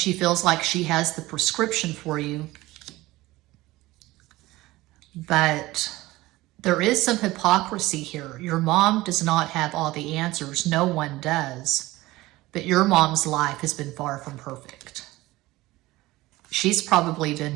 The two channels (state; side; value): quieter; left; 18.7 dB